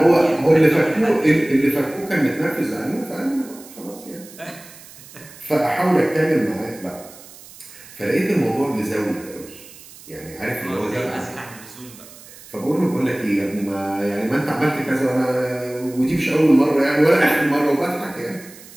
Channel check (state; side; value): noise; right; hiss, 20 dB below the sound